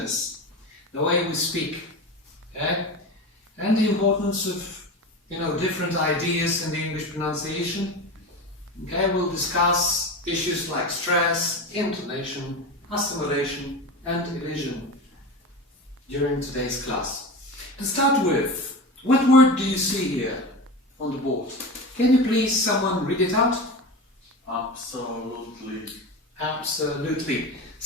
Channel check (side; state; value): both; normal; correlation 0.27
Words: The way we speak, okay? And the importance of, different ideas in the English pronunciation. Okay, we'll discuss issues like stress, intonation, assimilation, and elision during today's class. To start with, what word do you see here on the board? Can you please someone read it out? Absolutely. Absolutely.